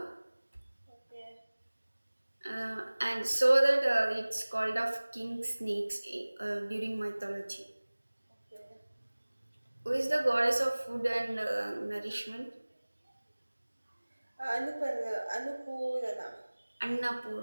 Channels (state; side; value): inverted; both; correlation -1.00